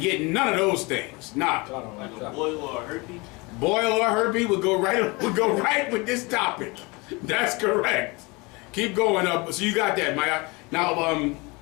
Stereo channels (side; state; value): right; quieter; 26.3 dB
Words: none of those things. Nah. Boil or herpes? Boil or herpes would go right with this topic. That's correct. Keep going up. So you got that, Maya. Now,